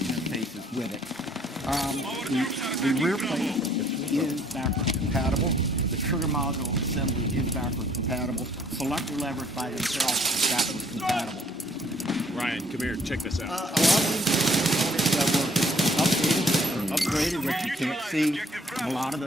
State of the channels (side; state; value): both; normal; correlation 0.61